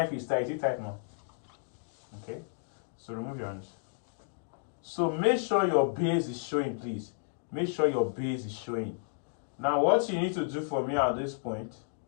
if it's tight. Is it tight now? Okay. So remove your hands. So make sure your base is showing, please. Make sure your base is showing. Now what you need to do for me at this point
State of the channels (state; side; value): silent; right; digital silence